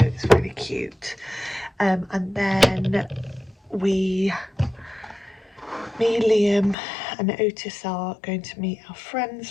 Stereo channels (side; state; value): right; drops out; at 6.8 s